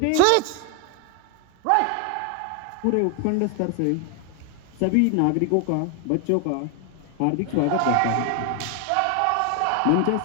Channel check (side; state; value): both; different; correlation 0.00